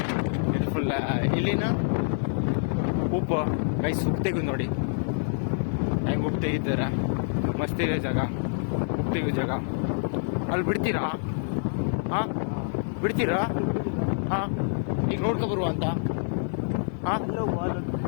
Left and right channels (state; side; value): silent; right; digital silence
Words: ಇದು ಫುಲ್ ಇಲ್ಲಿನ ಉಪ್ಪು ಗೈಸ್. ಉಪ್ಪು ತೆಗೆದು ನೋಡಿ ಹೆಂಗೆ ಉಪ್ಪು ತೆಗಿತಾರೆ. ಮಸ್ತ್ ಇದೆ ಜಾಗ, ಉಪ್ಪು ತೆಗೆಯೋ ಜಾಗ. ಅಲ್ಲಿ ಬಿಡ್ತೀರಾ? ಹಾಂ ಬಿಡ್ತೀರಾ? ಹಾಂ ಈಗ ನೋಡ್ಕೊ ಬರುವ ಅಂತ. ಹಾಂ